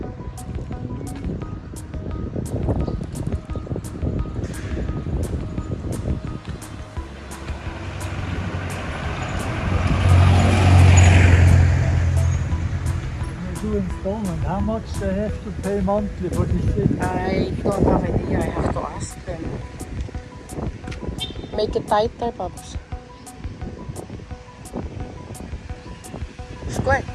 You're doing installment. How much they have to pay monthly for this thing? I don't have idea. I have to ask them. Make it tighter, Pops. Squirt.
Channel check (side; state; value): both; identical; correlation 1.00